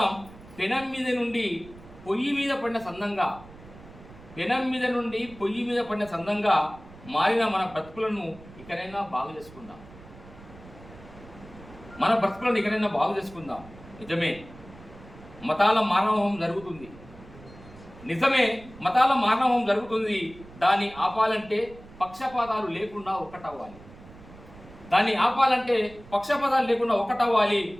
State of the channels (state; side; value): noise; right; rumble, 20 dB below the sound